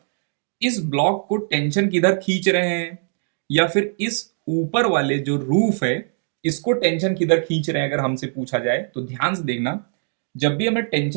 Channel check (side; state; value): left; silent; 57 dB below the other